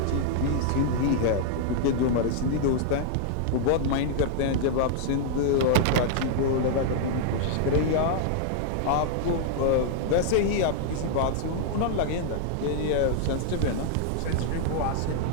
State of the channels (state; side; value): different; both; correlation -0.01